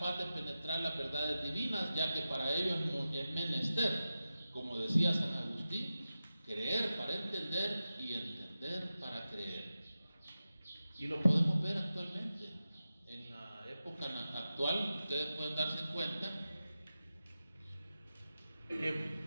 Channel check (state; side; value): inverted; both; correlation -0.93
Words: de penetrar las verdades divinas, ya que para ello es menester, como decía San Agustín, creer para entender y entender para creer. Y lo podemos ver actualmente. En la época actual, ustedes pueden darse cuenta que